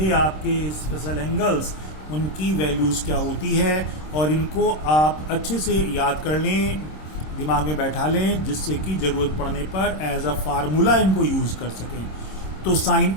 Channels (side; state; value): right; late; 26 ms